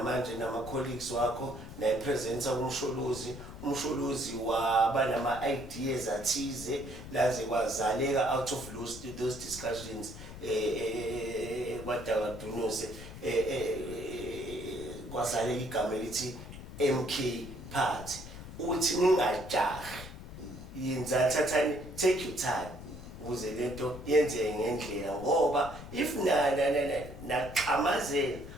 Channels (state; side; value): noise; left; rumble, 13 dB below the sound